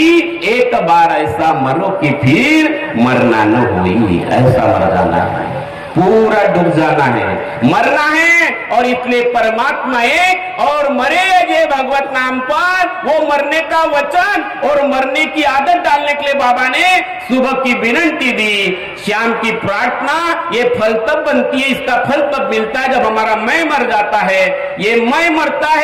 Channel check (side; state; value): both; identical; correlation 1.00